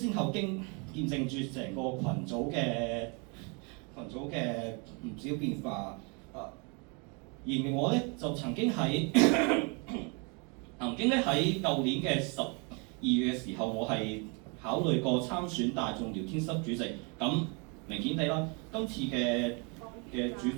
後見證住成個群組嘅唔少變化。而我咧就曾經喺舊年嘅12月嘅時候，我係考慮過參選大眾聊天室主席。咁明顯地啦，今次嘅主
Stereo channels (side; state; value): left; quieter; 33.3 dB